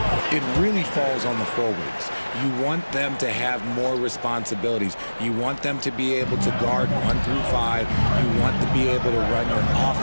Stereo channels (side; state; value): both; inverted; correlation -1.00